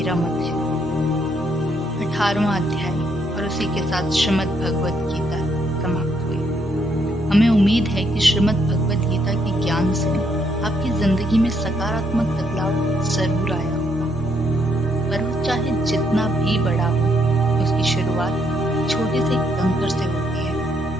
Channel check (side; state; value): left; noise; hum, 19 dB below the sound